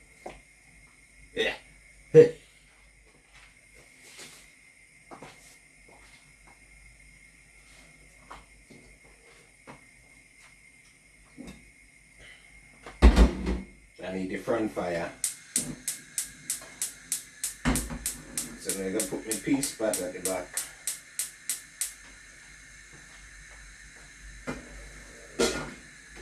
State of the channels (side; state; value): both; identical; correlation 1.00